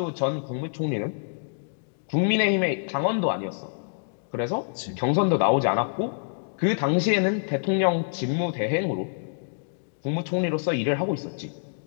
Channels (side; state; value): right; silent; digital silence